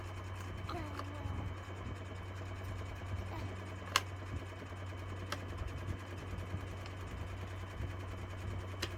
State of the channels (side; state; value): both; identical; correlation 1.00